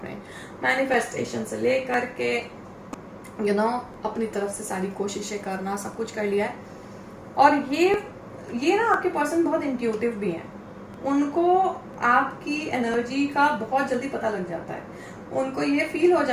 मैनिफेस्टेशन से लेकर के अपनी तरफ से सारी कोशिशें करना, सब कुछ कर लिया है। और ये ना आपके पर्सन बहुत इंट्यूटिव भी हैं, उनको आपकी एनर्जी का बहुत जल्दी पता लग जाता है, उनको ये फील हो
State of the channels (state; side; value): identical; both; correlation 1.00